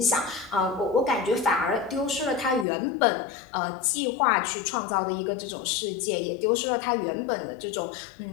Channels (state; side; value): drops out; right; at 2.7 s